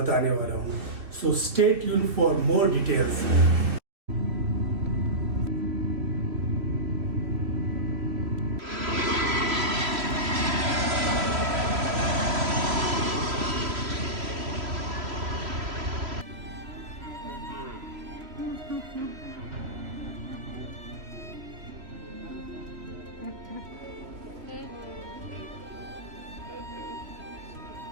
वाला हूँ। So stay tuned for more details.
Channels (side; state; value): left; late; 3.0 ms